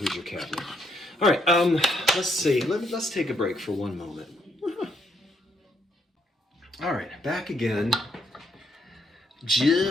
cabinet. All right, let's see. Let's take a break for one moment. All right, back again,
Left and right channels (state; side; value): normal; both; correlation 0.74